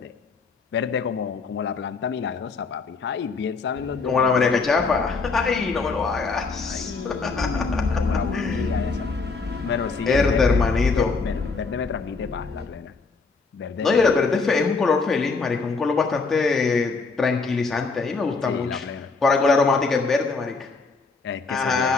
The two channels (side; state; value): right; quieter; 4.3 dB